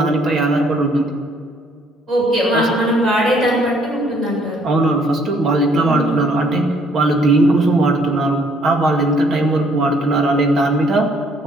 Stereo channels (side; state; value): both; normal; correlation 0.64